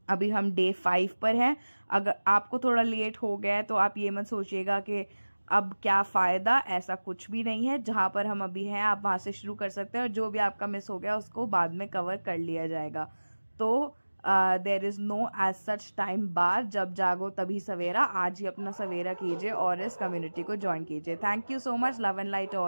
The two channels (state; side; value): inverted; both; correlation -1.00